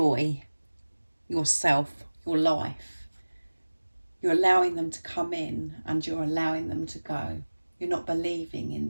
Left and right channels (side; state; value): both; inverted; correlation -1.00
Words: yourself, your life. You're allowing them to come in and you're allowing them to go. You're not believing